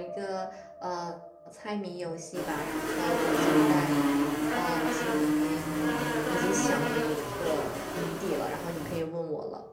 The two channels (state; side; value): identical; both; correlation 1.00